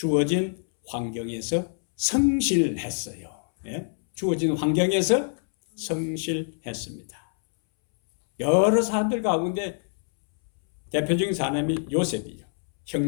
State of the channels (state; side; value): silent; right; 62 dB below the other